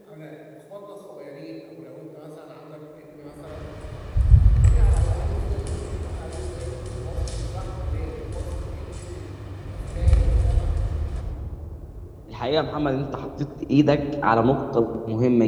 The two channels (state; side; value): identical; both; correlation 1.00